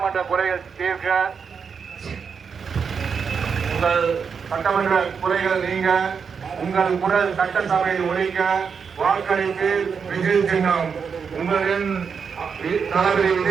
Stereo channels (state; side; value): quieter; left; 6.1 dB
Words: குறைகள் தீர்க்க, உங்கள் சட்டமன்ற குறைகள் நீங்க, உங்கள் குரல் சட்டசபையில் ஒழிக்க வாக்களிப்பு விஜய் சின்னம். உங்களின் தளபதி